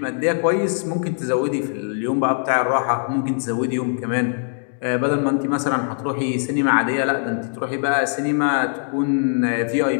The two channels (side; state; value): right; silent; digital silence